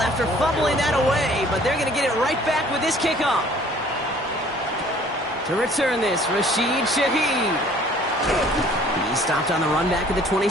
fumbling that away, but they're going to get it right back with this kickoff. To return this, Rashid Shaheed. He stopped on the run back at the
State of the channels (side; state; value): both; normal; correlation 0.55